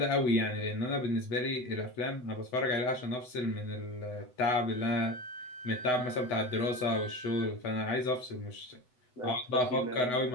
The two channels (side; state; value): right; late; 8.0 ms